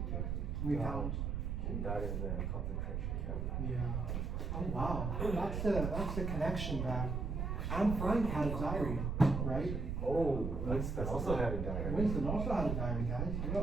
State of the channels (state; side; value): noise; right; rumble, 1 dB below the sound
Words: Okay. We found. She died in the concentration camp. Yeah. Oh wow, that's the connection that Anne Frank had a diary, right? Oh, Winston also had a diary. Winston also had a diary, guys.